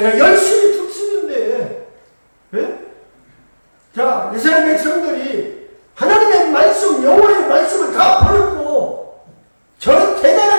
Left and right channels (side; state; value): both; inverted; correlation -1.00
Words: 열심히 듣습인데 자 이스라엘 백성들이 하나님의 말씀 여호와의 말씀을 다 버렸고 저